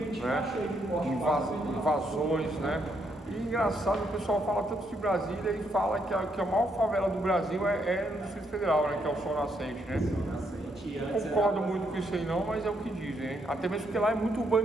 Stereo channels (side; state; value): both; normal; correlation 0.76